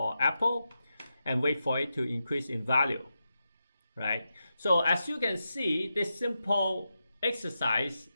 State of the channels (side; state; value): both; inverted; correlation -0.88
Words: Apple and wait for it to increase in value, right? So as you can see, this simple exercise